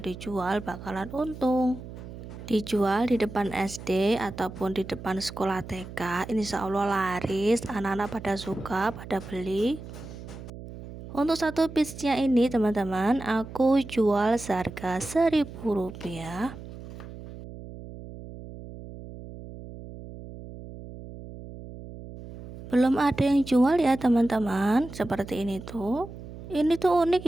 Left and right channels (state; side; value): noise; right; hum, 13 dB below the sound